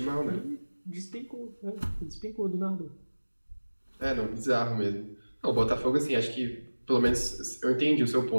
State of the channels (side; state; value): both; inverted; correlation -1.00